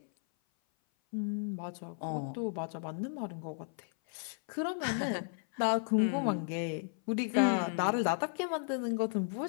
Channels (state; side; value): silent; right; 55 dB below the other